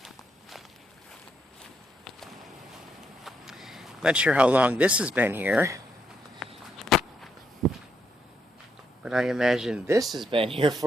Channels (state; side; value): normal; both; correlation 0.78